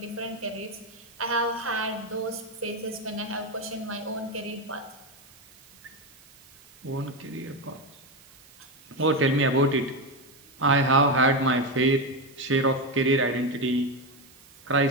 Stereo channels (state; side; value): noise; right; hiss, 25 dB below the sound